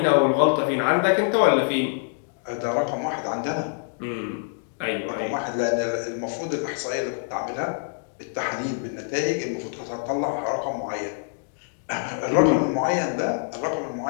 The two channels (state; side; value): silent; right; digital silence